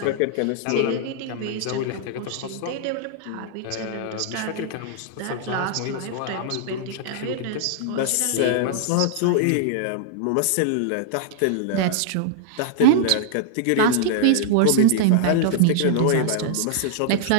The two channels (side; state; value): both; different; correlation -0.01